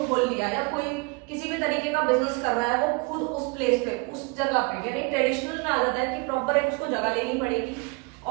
खोल लिया, या कोई किसी भी तरीके का बिजनेस कर रहा है, वो खुद उस प्लेस पे, उस जगह पे, यानी ट्रेडिशनल में आ जाता है कि प्रॉपर एक उसको जगह लेनी पड़ेगी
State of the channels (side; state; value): left; quieter; 31.0 dB